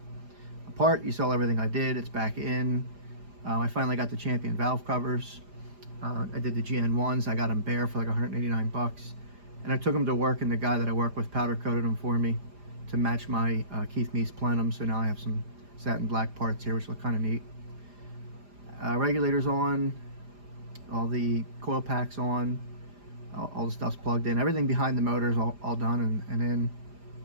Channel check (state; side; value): late; left; 4.9 ms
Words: apart. You saw everything I did. It's back in. I finally got the Champion valve covers. I did the GN1s. I got them bare for like 189 bucks, and I took them to work, and the guy that I work with powder coated them for me to match my Keith Meese plenum. So now I have some satin black parts here, which look kind of neat. Regulators on, all the coil packs on, all the stuff's plugged in. Everything behind the motor is all done and in.